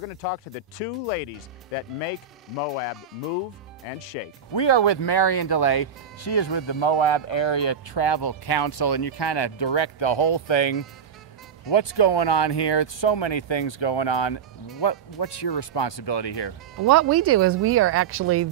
to talk to the two ladies that make Moab move and shake. We are with Marion DeLay. She is with the Moab Area Travel Council, and you kind of direct the whole thing. What's going on here? So many things going on. What's your responsibility here? What we do is we are actually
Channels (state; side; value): quieter; left; 7.0 dB